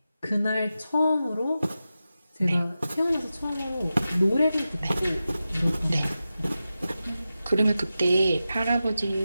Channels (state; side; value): inverted; both; correlation -0.93